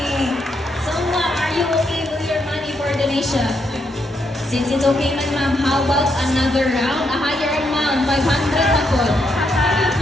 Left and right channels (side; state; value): both; normal; correlation 0.78